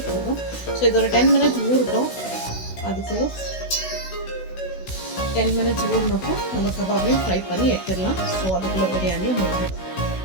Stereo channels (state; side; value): late; right; 16 ms